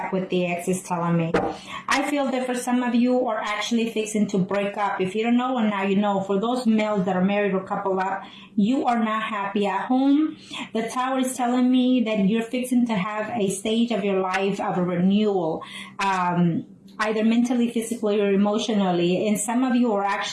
with the ex is telling me. I feel that for some of you are actually fixing to break up. If you don't know, and now you know, for those males that are married or coupled up, you are not happy at home. The Tower is telling me that you're fixing to have a stage of your life of a renewal, either mentally, physically, or emotionally. And some of you are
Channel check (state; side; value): identical; both; correlation 1.00